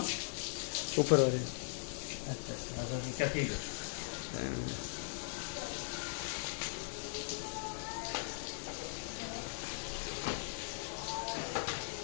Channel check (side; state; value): right; silent; 51 dB below the other